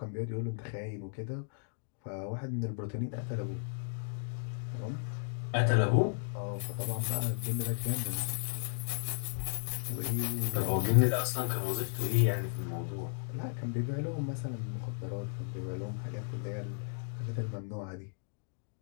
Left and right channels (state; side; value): silent; right; digital silence